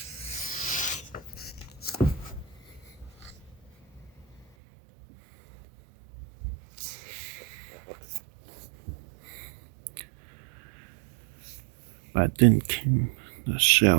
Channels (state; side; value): drops out; left; at 4.5 s